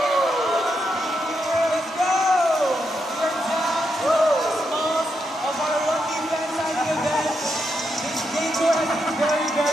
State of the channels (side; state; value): both; normal; correlation 0.83